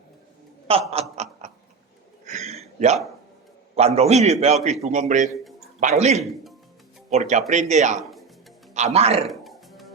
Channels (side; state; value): left; quieter; 5.0 dB